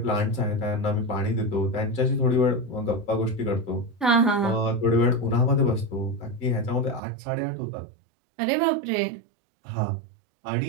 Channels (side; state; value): left; drops out; at 7.0 s